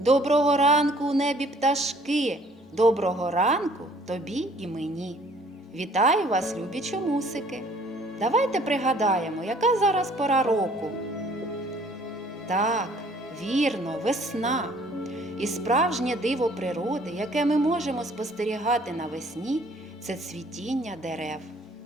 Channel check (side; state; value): both; normal; correlation 0.57